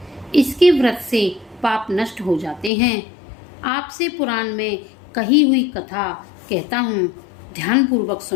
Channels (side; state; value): right; drops out; at 2.7 s